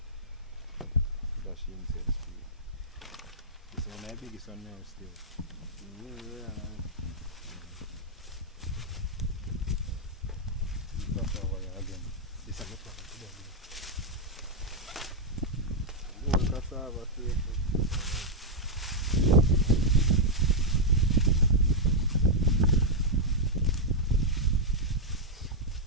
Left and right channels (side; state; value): both; normal; correlation -0.03